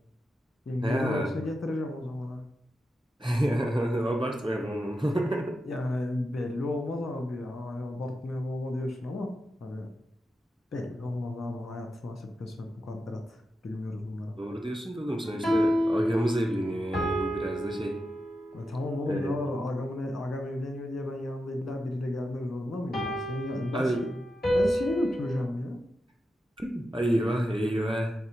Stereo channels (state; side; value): normal; both; correlation 0.88